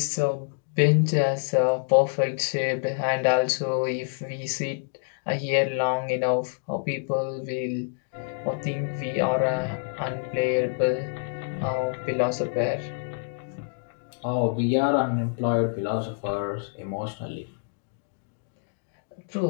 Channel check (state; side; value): silent; right; digital silence